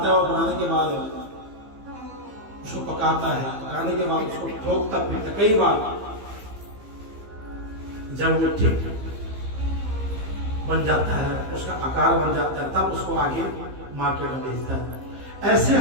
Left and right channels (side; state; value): left; late; 15 ms